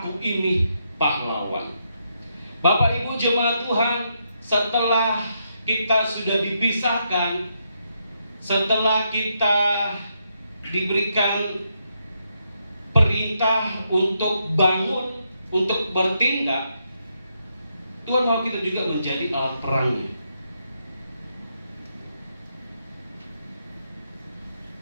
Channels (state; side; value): inverted; both; correlation -0.80